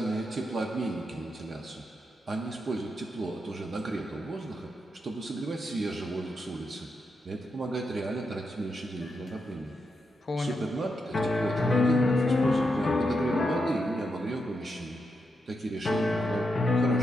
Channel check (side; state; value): both; normal; correlation 0.84